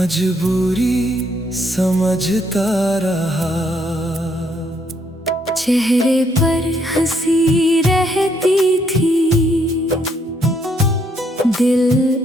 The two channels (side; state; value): both; normal; correlation 0.71